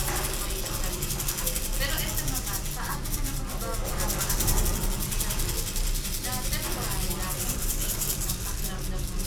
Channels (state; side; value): identical; both; correlation 1.00